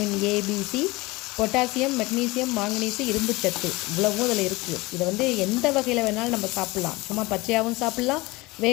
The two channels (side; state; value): right; quieter; 22.0 dB